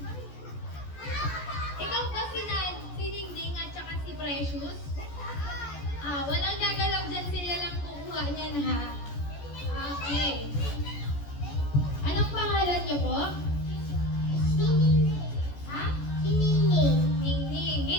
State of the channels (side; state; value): right; late; 14 ms